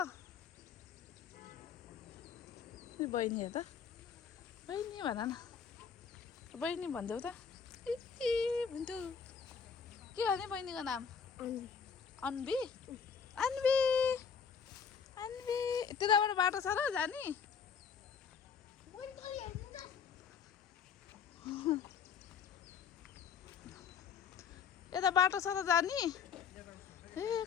बहिनी हेर त बहिनी भन न बहिनी भनिदेऊ त भन्छु के हो नि बहिनीको नाम अन्वी अन्वी अन्वी त्यताबाट बाटो छ र जाने यता बाटो छ त जाने ए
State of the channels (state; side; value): quieter; right; 6.6 dB